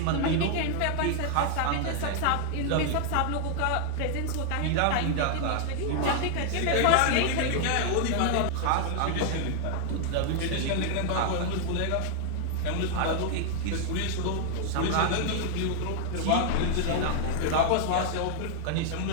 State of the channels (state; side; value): different; both; correlation 0.00